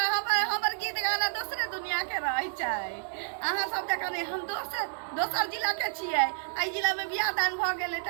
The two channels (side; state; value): left; silent; digital silence